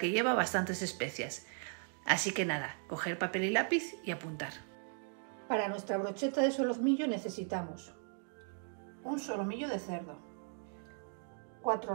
lleva bastantes especias. Así que nada, coger papel y lápiz y apuntar. Para nuestra brocheta de solomillo necesitamos un solomillo de cerdo,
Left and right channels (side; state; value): left; silent; 53 dB below the other